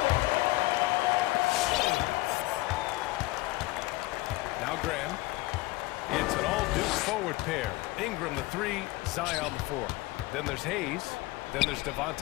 Now Graham. It's an all-Duke forward pair. Ingram the 3, Zion the 4. Then there's Hayes. Then there's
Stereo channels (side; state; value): right; quieter; 20.3 dB